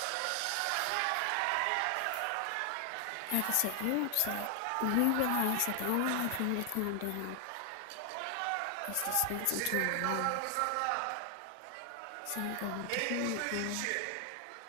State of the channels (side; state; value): both; different; correlation 0.00